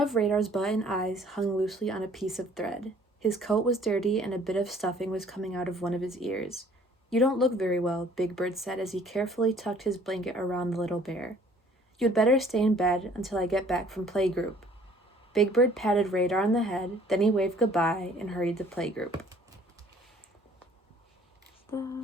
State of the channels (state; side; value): normal; both; correlation 0.56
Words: Radar's button eyes hung loosely on a piece of thread. His coat was dirty, and a bit of stuffing was coming out of one of his ears. "You don't look very well," Big Bird said as he carefully tucked his blanket around the little bear. "You'd better stay in bed until I get back from playgroup." Big Bird patted Radar on the head, then he waved goodbye and hurried to playgroup.